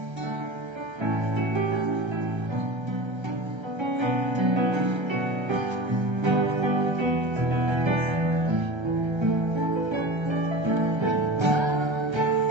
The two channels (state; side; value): late; left; 1.3 ms